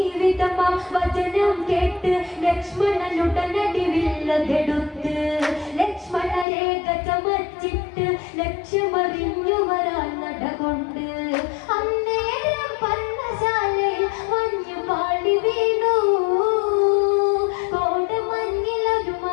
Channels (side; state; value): right; drops out; at 6.5 s